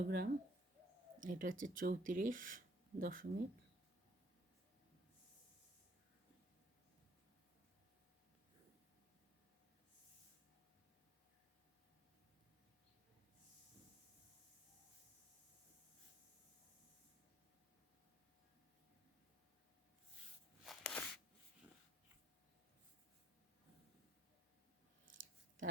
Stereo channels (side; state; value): both; normal; correlation 0.64